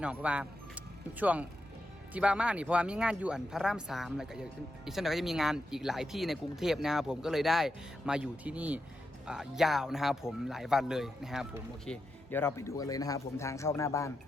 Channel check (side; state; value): both; normal; correlation 0.86